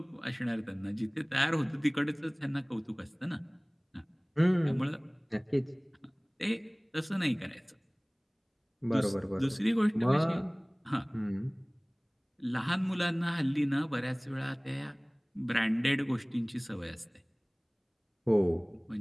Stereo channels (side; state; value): both; identical; correlation 1.00